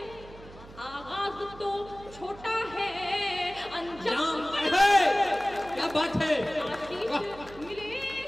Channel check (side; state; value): right; noise; hum, 19 dB below the sound